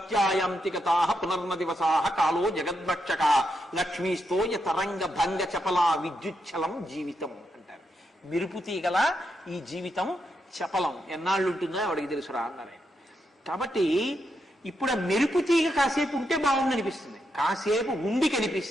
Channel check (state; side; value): normal; both; correlation 0.83